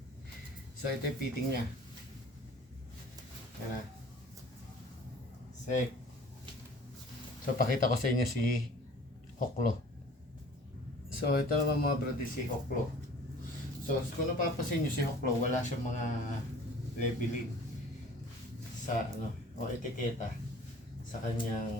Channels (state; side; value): normal; both; correlation 0.48